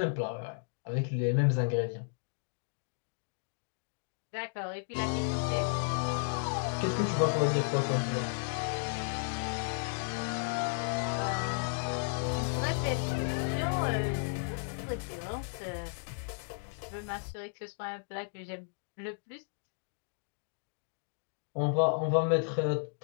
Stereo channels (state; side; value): silent; right; digital silence